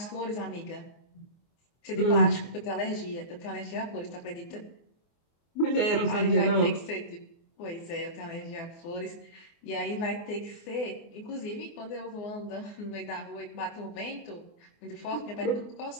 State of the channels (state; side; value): late; right; 24 ms